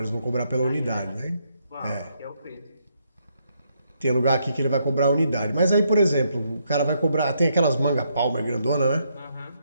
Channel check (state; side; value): inverted; both; correlation -0.75